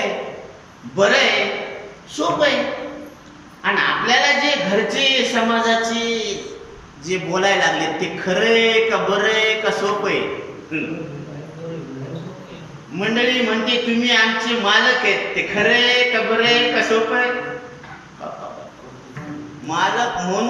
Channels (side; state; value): both; identical; correlation 1.00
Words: बरं आहे, सोपं आहे. आणि आपल्याला जे घरचे समाजाचे जे बोलायला लागले ते खरं आहे का, बरं आहे का, सोपं आहे? मंडळी म्हणते तुम्ही आमचे मालक आहेत, ते खरं आहे का, बरं आहे का, सोपं आहे? मालक